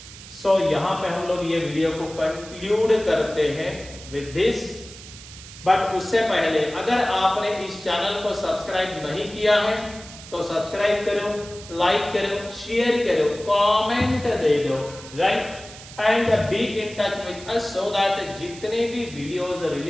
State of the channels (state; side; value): noise; right; hiss, 16 dB below the sound